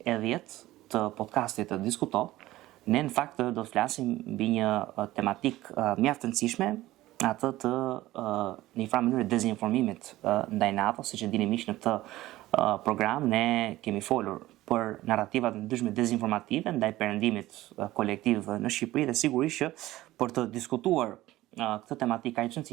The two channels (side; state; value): left; quieter; 16.5 dB